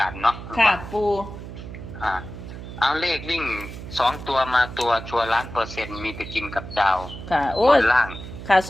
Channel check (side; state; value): right; noise; hum, 11 dB below the sound